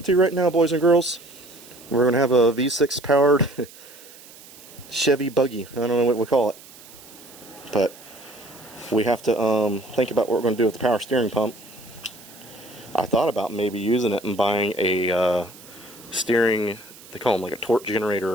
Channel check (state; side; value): noise; right; hiss, 20 dB below the sound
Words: to right now, boys and girls. We're going to have a V6 powered Chevy buggy. I don't know what we call it. But we have to think about what we're going to do with the power steering pump. I thought about maybe using it and buying a steering, they call them like a torque